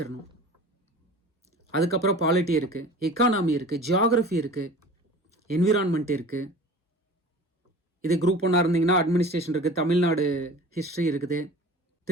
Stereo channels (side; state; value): both; normal; correlation 0.41